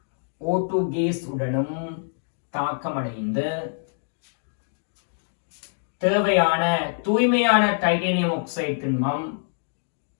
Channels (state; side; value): silent; right; digital silence